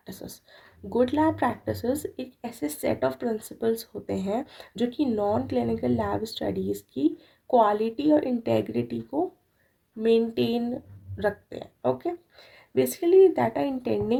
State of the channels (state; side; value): identical; both; correlation 1.00